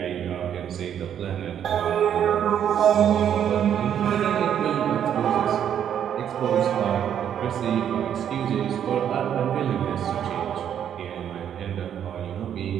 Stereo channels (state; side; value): quieter; left; 9.3 dB